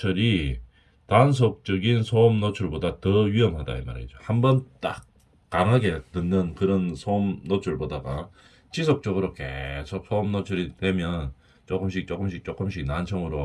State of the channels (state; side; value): identical; both; correlation 1.00